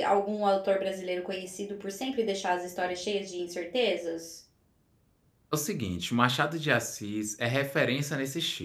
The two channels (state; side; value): identical; both; correlation 1.00